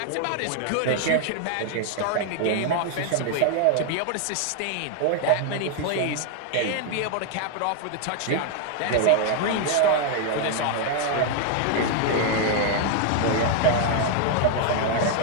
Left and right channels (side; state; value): both; different; correlation 0.00